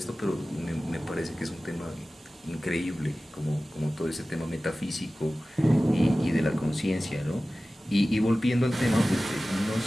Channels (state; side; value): normal; both; correlation 0.96